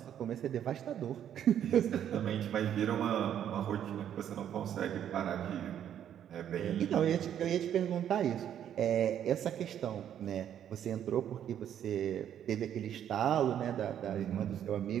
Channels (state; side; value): quieter; left; 9.9 dB